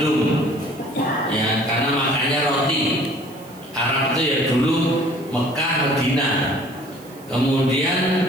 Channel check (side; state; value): right; noise; hiss, 24 dB below the sound